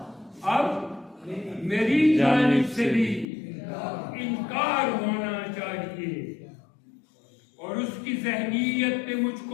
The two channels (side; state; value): right; drops out; at 3.2 s